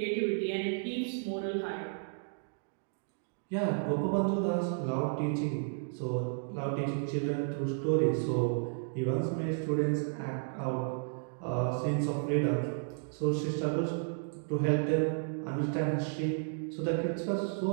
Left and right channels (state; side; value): silent; left; digital silence